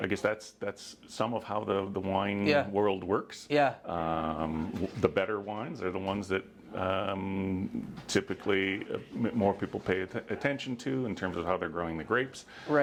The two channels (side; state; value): both; identical; correlation 1.00